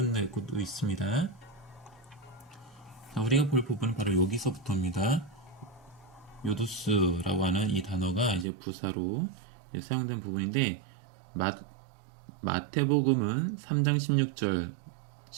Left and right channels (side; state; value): left; drops out; at 8.5 s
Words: 것도 있습니다. 자, 우리가 볼 부분은 바로 여기서부터입니다. 요두스라고 하는 이 단어가 이제 부사로 사용된 부분인데 마태복음은 3장 16절,